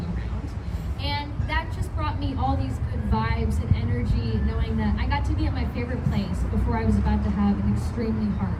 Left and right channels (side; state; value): both; identical; correlation 1.00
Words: round. And that just brought me all these good vibes and energy, knowing that I got to be at my favorite place before I was about to have an extremely hard